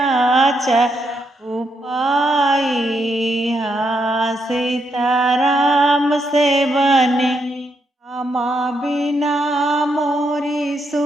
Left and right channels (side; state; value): both; normal; correlation 0.79